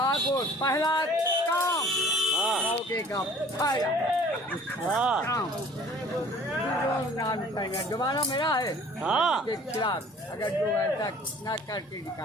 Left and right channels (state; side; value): normal; both; correlation 0.50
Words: पहला काम मौके का फायदा काम जमाना मेरा है के खिलाफ अगर जो ऐसा न करके